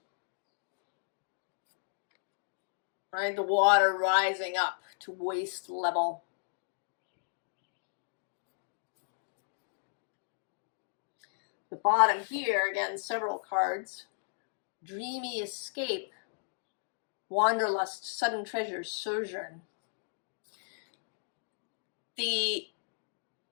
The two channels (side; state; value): right; silent; digital silence